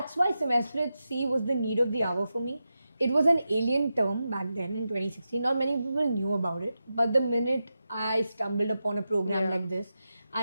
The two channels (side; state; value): both; inverted; correlation -0.90